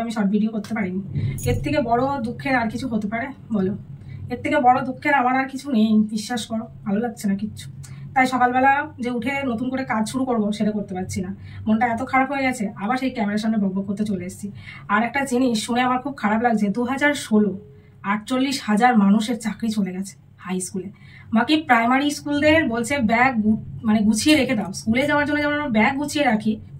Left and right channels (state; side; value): identical; both; correlation 1.00